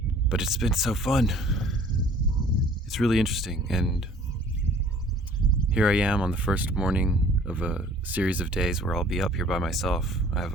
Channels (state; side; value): normal; both; correlation 0.52